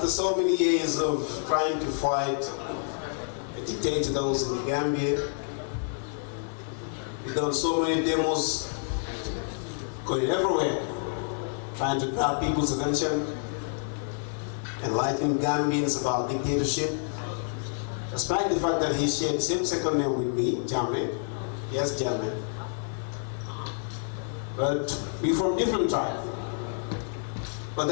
so many years of trying to fight the dictator that was in the Gambia, we've done so many demos going everywhere, trying to grab people's attention, enlighten Gambians about dictatorship, despite the fact that he shared the same second name with me, Jammeh. Yes, Jammeh. But we're from different tribes. But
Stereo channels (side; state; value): right; silent; digital silence